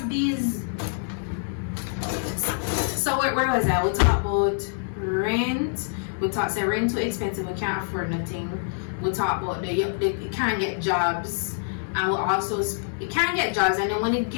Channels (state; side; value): silent; right; digital silence